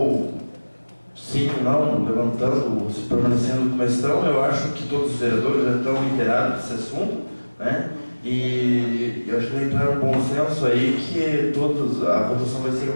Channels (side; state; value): both; inverted; correlation -1.00